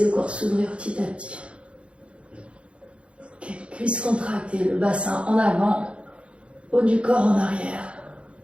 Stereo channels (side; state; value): left; late; 0.059 ms